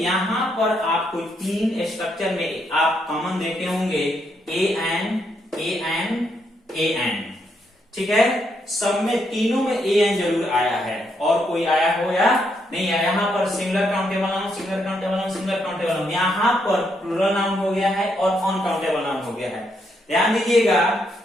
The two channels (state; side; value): normal; both; correlation 0.77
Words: पर आपको तीन स्ट्रक्चर में आप कॉमन देखे होंगे, ए एन, ठीक है। सब में तीनों में ए एन जरूर आया है, और कोई आया हो या नहीं आया। यहाँ पर singular countable noun, singular countable noun, singular countable noun, यहाँ पर प्लूरल नाउन हो गया है और अनकाउंटेबल नाउन हो गया है। ध्यान दीजिएगा,